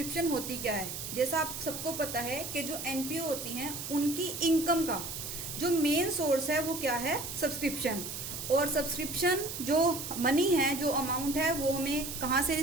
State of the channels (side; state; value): right; noise; hiss, 7 dB below the sound